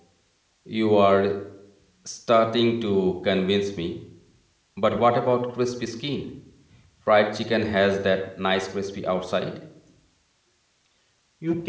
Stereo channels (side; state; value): both; identical; correlation 1.00